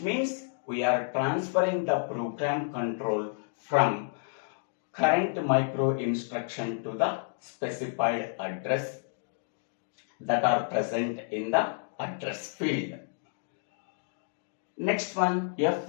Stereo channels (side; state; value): right; silent; digital silence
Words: means we are transferring the program control from current micro instruction to the specified address that are present in the address field. Next one,